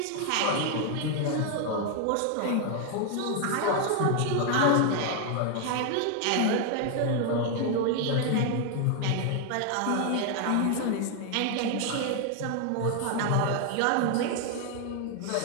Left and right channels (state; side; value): different; both; correlation 0.00